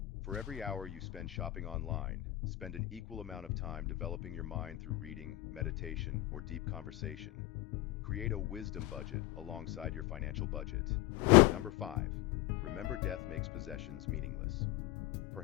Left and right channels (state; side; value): quieter; right; 16.9 dB